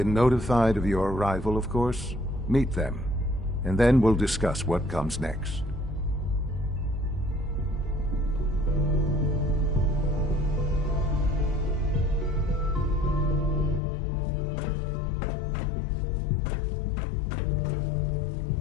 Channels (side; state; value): right; drops out; at 13.8 s